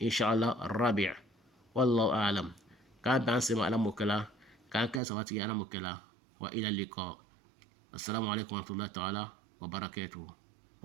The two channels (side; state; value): left; drops out; at 5.0 s